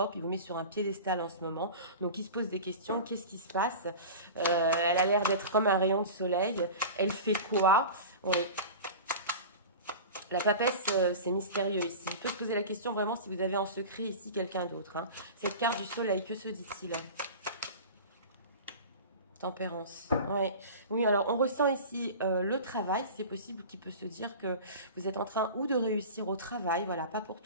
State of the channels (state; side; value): inverted; both; correlation -0.33